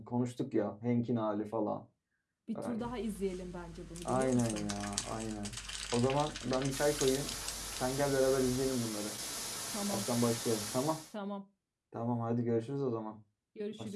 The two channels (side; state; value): both; identical; correlation 1.00